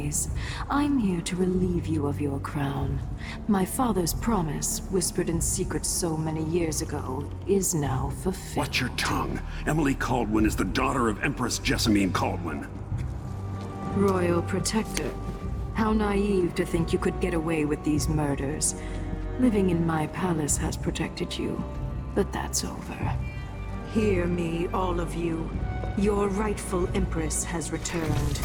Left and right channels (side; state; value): both; identical; correlation 1.00